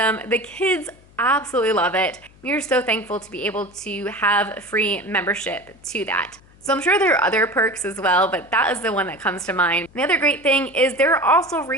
The kids absolutely love it. We are so thankful to be able to have free membership to that. So I'm sure there are other perks as well, but that is the one that comes to mind. The other great thing is there are also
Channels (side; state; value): left; noise; hum, 27 dB below the sound